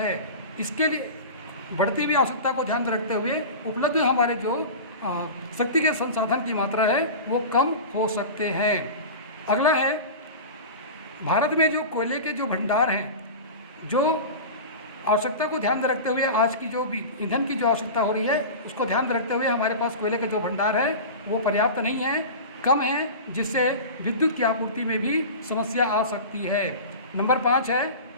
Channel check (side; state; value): both; inverted; correlation -0.31